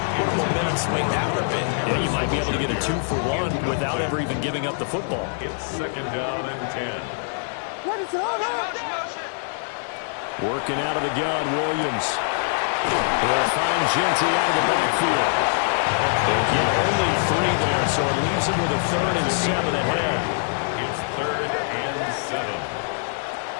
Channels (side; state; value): right; silent; digital silence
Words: What a momentum swing that would have been. Yeah, you might be able to get a 2-for-1 without ever even giving up the football. It's 2nd down and 10. What is all that? Working out of the gun, Williams. He'll find Genty out of the backfield. They'll get only 3 there, so it leaves him with a 3rd and 7 ahead. It's 3rd and 7.